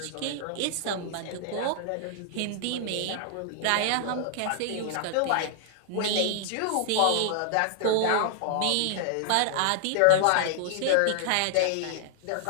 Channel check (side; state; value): both; different; correlation -0.01